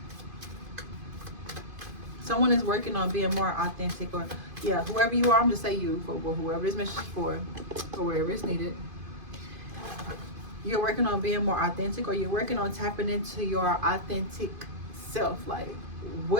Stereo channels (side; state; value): left; late; 2.5 ms